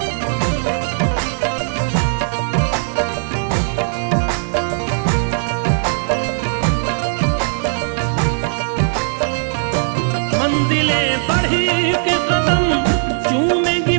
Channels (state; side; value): silent; left; 67 dB below the other